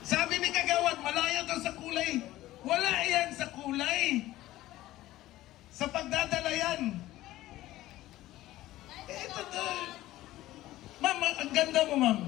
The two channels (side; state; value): right; quieter; 15.8 dB